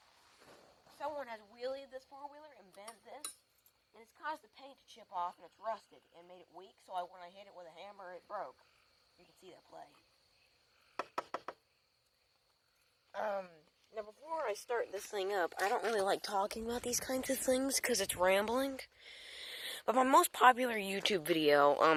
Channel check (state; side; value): identical; both; correlation 1.00